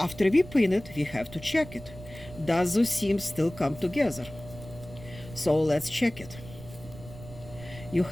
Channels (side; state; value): right; noise; rumble, 16 dB below the sound